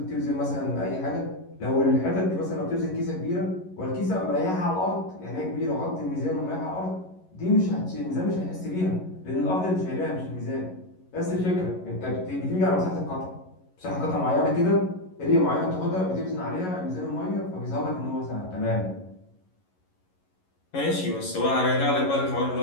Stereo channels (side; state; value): right; late; 11 ms